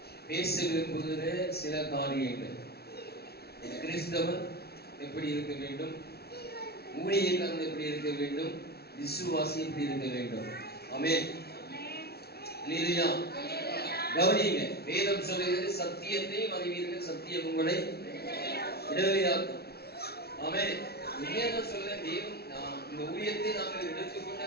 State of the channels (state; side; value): late; right; 0.46 ms